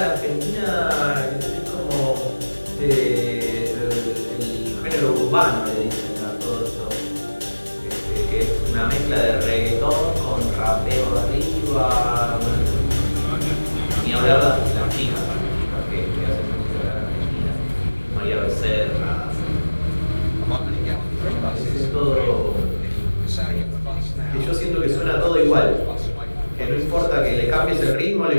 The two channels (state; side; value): inverted; both; correlation -1.00